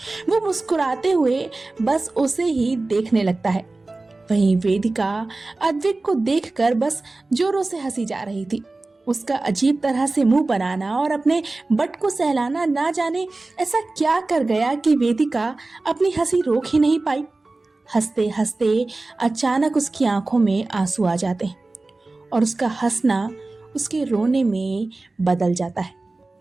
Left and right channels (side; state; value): left; quieter; 3.2 dB